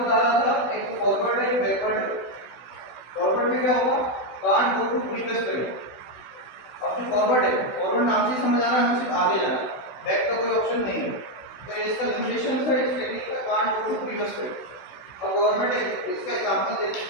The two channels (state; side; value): late; right; 16 ms